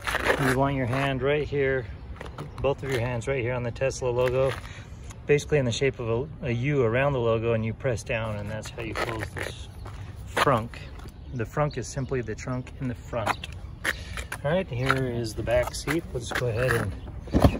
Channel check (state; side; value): identical; both; correlation 1.00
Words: You want your hand right here, both of your hands right here on the Tesla logo, basically in the shape of a U around the logo, and you press down, and that's how you close this frunk. The frunk is simply the trunk in the front. All right, here is the back seat. Let's go ahead